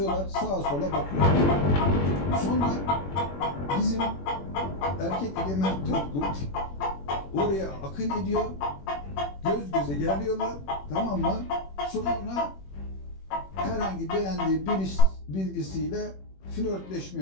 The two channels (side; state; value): right; late; 21 ms